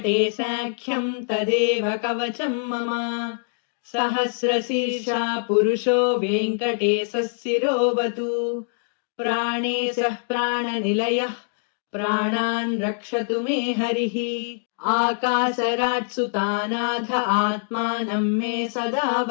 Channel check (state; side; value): silent; right; digital silence